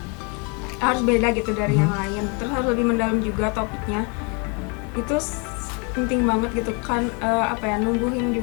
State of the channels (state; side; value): quieter; right; 34.0 dB